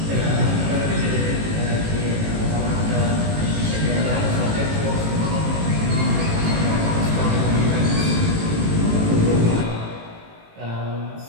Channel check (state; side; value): late; left; 18 ms